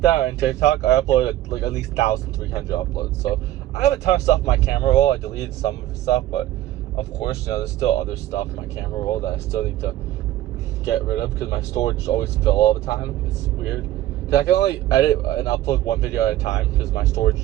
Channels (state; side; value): quieter; left; 14.3 dB